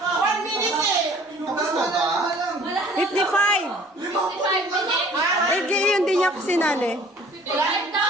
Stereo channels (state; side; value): normal; both; correlation 0.52